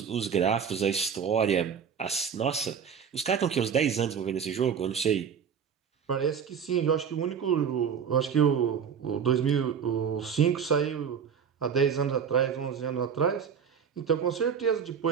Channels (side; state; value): left; quieter; 7.2 dB